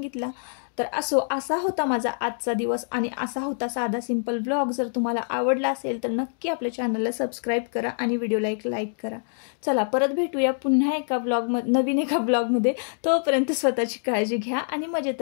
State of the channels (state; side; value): silent; right; digital silence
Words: तर असा होता माझा आजचा दिवस. आणि असा होता साधा सिंपल व्लॉग. जर तुम्हाला आवडला असेल तर नक्की आपल्या चॅनलला सबस्क्राईब करा आणि व्हिडिओला एक लाईक करा. चला परत भेटूया पुन्हा एका नवीन एका ब्लॉगमध्ये. तोपर्यंत स्वतःची काळजी घ्या आणि मजेत